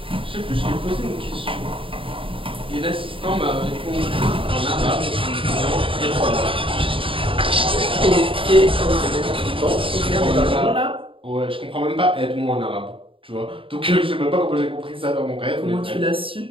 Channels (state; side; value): late; left; 0.26 ms